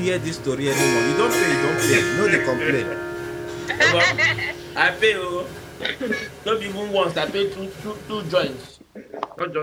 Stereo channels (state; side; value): identical; both; correlation 1.00